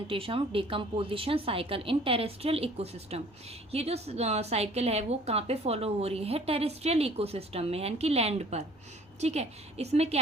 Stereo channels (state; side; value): normal; both; correlation 0.53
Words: of decomposition cycle in terrestrial ecosystem. ये जो साइकिल है वो कहाँ पे फॉलो हो रही है, टेरेस्ट्रियल इकोसिस्टम में, यानी कि लैंड पर, ठीक है। इसमें क्या